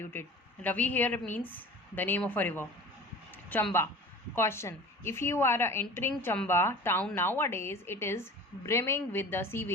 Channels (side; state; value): both; normal; correlation 0.39